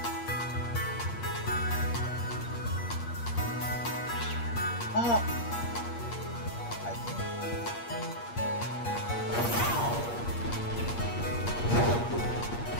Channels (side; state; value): right; late; 8.5 ms